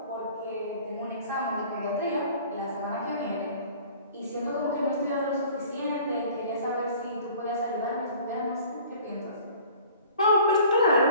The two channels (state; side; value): inverted; both; correlation -0.48